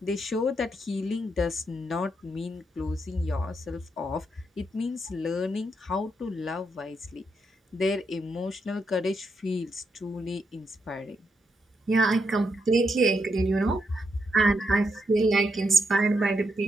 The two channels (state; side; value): normal; both; correlation 0.80